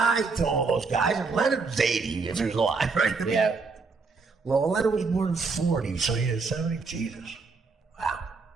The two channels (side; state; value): left; quieter; 4.4 dB